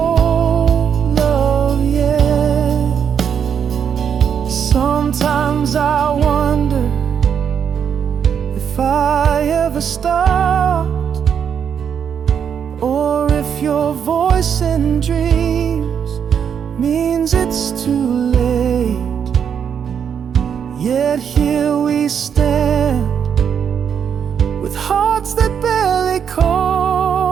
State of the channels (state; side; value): quieter; left; 7.8 dB